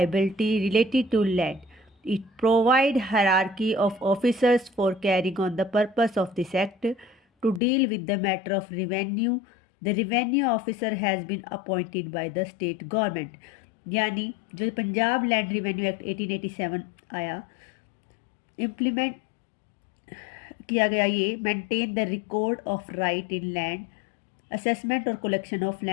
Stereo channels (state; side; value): drops out; right; at 7.6 s